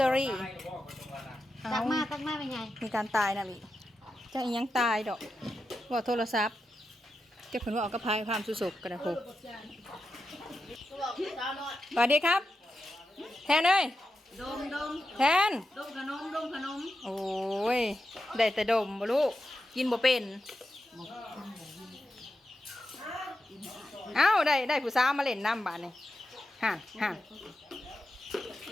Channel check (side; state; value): both; normal; correlation 0.88